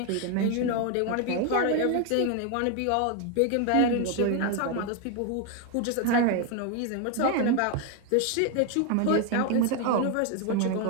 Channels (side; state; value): both; different; correlation 0.01